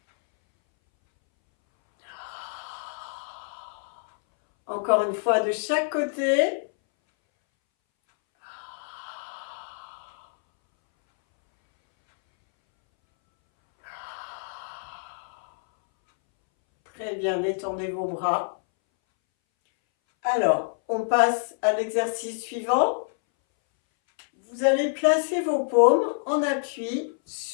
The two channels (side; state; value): right; silent; 61 dB below the other